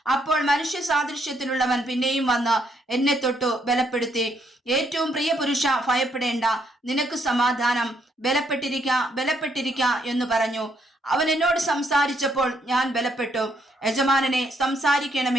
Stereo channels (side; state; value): both; normal; correlation 0.72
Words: അപ്പോൾ മനുഷ്യ സാദൃശ്യത്തിലുള്ളവൻ പിന്നെയും വന്ന് എന്നെ തൊട്ടു ബലപ്പെടുത്തി. ഏറ്റവും പ്രിയ പുരുഷ, ഭയപ്പെടേണ്ട, നിനക്ക് സമാധാനം, ബലപ്പെട്ടിരിക്ക എന്ന് പറഞ്ഞു. അവൻ എന്നോട് സംസാരിച്ചപ്പോൾ ഞാൻ ബലപ്പെട്ടു. യജമാനനെ,